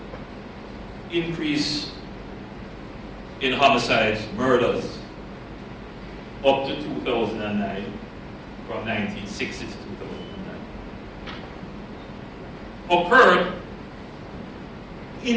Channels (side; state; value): both; identical; correlation 1.00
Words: increase in homicides, murders, up to 2009, from 1960 to 2009, occurred